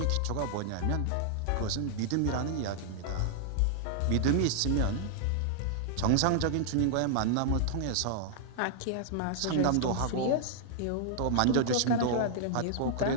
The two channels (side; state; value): both; different; correlation -0.01